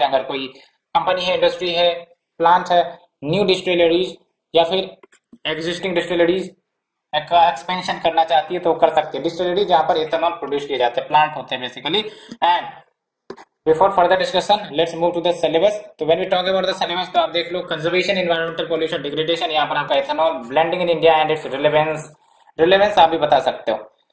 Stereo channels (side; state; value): both; identical; correlation 1.00